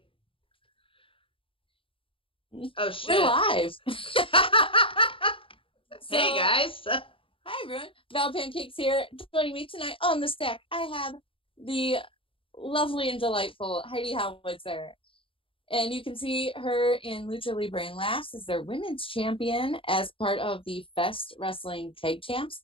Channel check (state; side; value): late; right; 0.26 ms